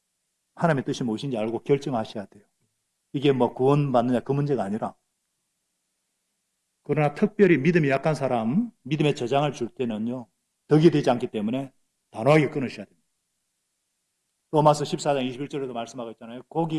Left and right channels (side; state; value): both; identical; correlation 1.00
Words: 하나님의 뜻이 무엇인지 알고 결정하셔야 돼요. 이게 뭐 구원받느냐 그 문제가 아니라. 그러나 특별히 믿음이 약한 사람, 믿음의 저장을 줄 때는요, 덕이 되지 않기 때문에 단호하게 끊으셔야 됩니다. 로마서 14장 21절에도 말씀하고 있잖아요.